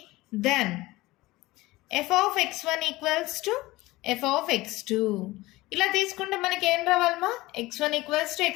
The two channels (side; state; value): right; quieter; 19.4 dB